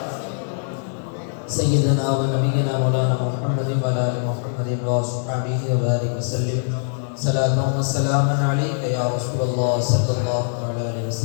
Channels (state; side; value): silent; right; digital silence